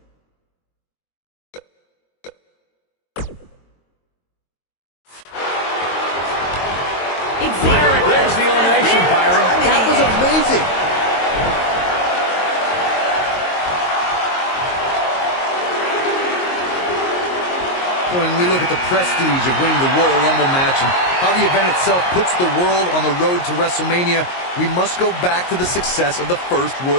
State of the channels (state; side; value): late; right; 22 ms